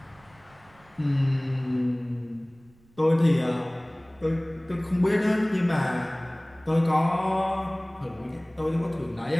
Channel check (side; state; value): right; noise; rumble, 30 dB below the sound